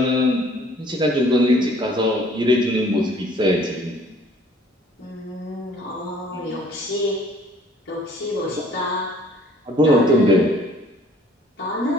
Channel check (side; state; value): both; normal; correlation 0.56